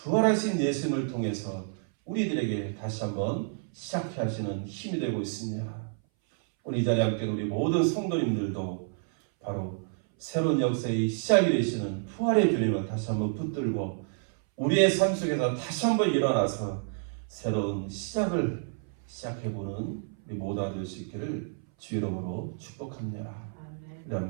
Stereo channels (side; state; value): left; silent; 58 dB below the other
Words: 예수님을 통해서 우리들에게 다시 한번 시작해 하시는 힘이 되고 있습니다. 오늘 이 자리에 함께 우리 모든 성도님들도 바로 새로운 역사의 시작이 되시는 부활의 주님을 다시 한번 붙들고 우리의 삶 속에서 다시 한번 일어나서 새로운 시작을 시작해보는 우리 모두가 될 수 있기를 주 이름으로 축복합니다. 우리